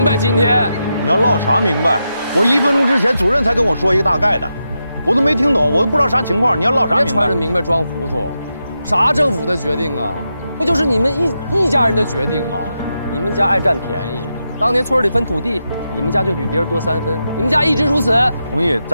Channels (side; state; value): both; inverted; correlation -0.87